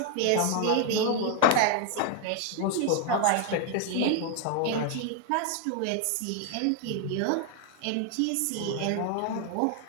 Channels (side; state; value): both; different; correlation 0.00